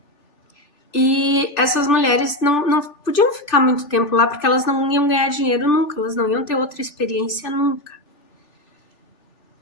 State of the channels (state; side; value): late; right; 3.4 ms